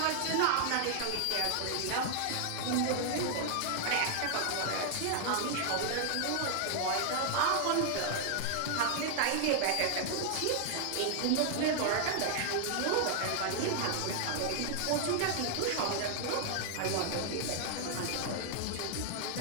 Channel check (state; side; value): different; both; correlation 0.00